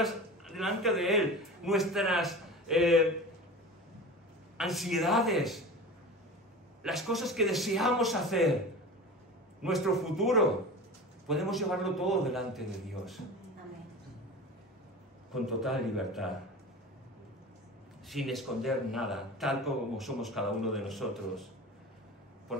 delante de Él. Nuestras ansiedades. Las cosas que deseamos hacer. Nuestro futuro. Podemos llevarlo todo delante de Dios. Con total libertad. Sin esconder nada, tal como somos cada uno de nosotros.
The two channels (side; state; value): both; normal; correlation 0.33